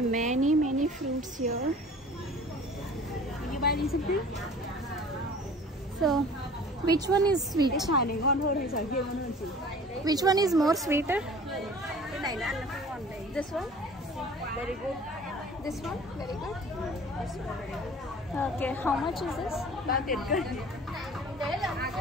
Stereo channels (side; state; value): both; normal; correlation 0.45